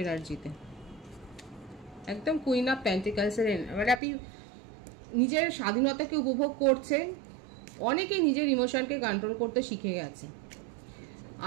এনার্জিতে একদম কুইন অফ পেন্টিকলসের মানে আপনি নিজের স্বাধীনতাকে উপভোগ করছেন। অনেকে নিজের ইমোশনকে কন্ট্রোল করতে শিখে গেছে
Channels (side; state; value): left; drops out; at 4.0 s